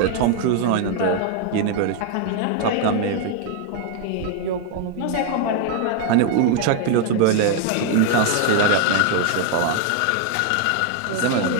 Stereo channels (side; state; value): both; different; correlation 0.00